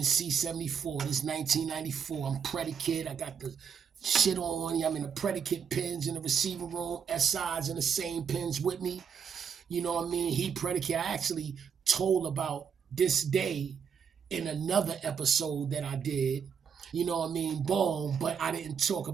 C-74. This is 1994. I'm predicate. I got the shit on. I'm in the predicate pins in the receiver room. SI's in the same pins with me. You know what I mean? He predicate. I actually told about this day in another episode that I did. You know what I mean? Boom. But I didn't talk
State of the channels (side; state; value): left; quieter; 7.0 dB